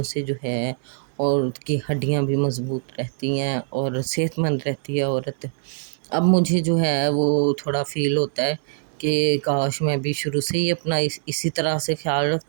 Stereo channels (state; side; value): silent; left; digital silence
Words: سے جو ہے عورت کی ہڈیاں بھی مضبوط رہتی ہیں اور صحت مند رہتی ہے عورت۔ اب مجھے جو ہے وہ تھوڑا فیل ہوتا ہے کہ کاش میں بھی شروع سے ہی اپنا اسی طرح سے خیال